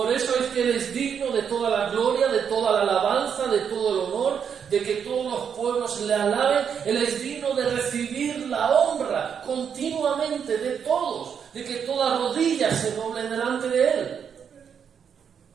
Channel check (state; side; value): quieter; left; 7.5 dB